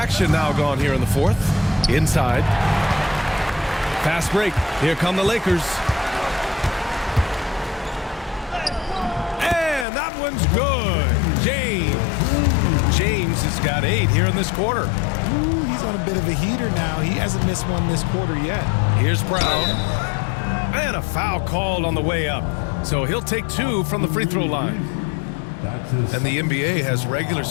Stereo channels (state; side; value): drops out; right; at 9.9 s